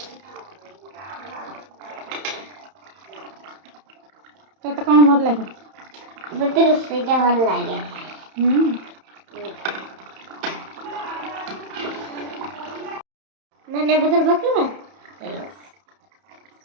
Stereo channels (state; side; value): late; left; 31 ms